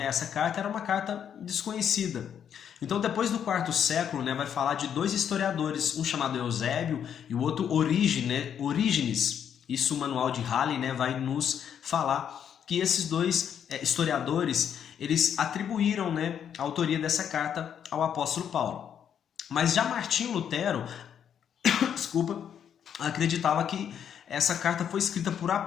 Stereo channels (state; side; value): quieter; right; 8.6 dB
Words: Essa carta era uma carta desconhecida. Então, depois do quarto século, né, vai falar de dois historiadores, um chamado Eusébio e o outro Orígenes. Isso o manual de Halley, né, vai nos falar que esses dois historiadores eles atribuíram, né, a autoria dessa carta ao apóstolo Paulo. Mas já Martinho Lutero, desculpa, acreditava que essa carta foi escrita por